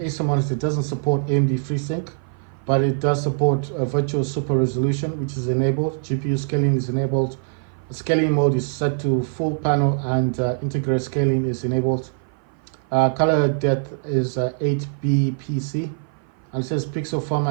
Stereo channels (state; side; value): silent; left; 56 dB below the other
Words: monitor. It doesn't support AMD FreeSync, but it does support virtual super resolution, which is enabled. GPU scaling is enabled. The scaling mode is set to full panel, and integrated scaling is enabled. Color depth is 8bpc, and it says pixel